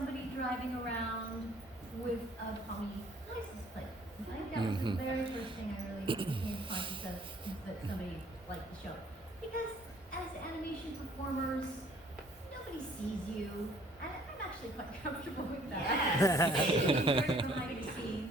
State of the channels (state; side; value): normal; both; correlation 0.58